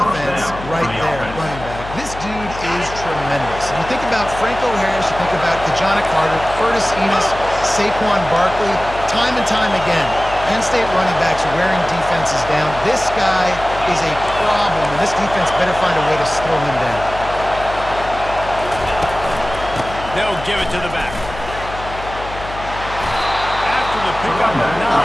right there, running back. This dude is tremendous. And you think about Franco Harris, you think about Kajana Carter, Curtis Enos, Saquon Barkley, time and time again. Penn State running backs wearing defenses down. This guy is a problem, and this defense better find a way to slow him down. They'll give it to the back. After the pickup of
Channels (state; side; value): noise; left; hum, 12 dB below the sound